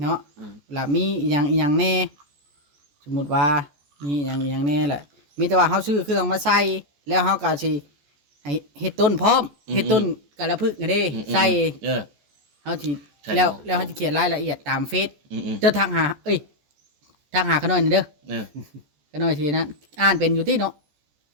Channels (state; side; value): late; left; 14 ms